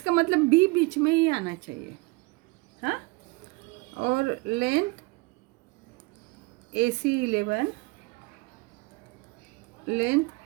मतलब बी बीच में ही आना चाहिए। हाँ, और लेंथ ए सी 11, लेंथ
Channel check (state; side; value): quieter; left; 25.3 dB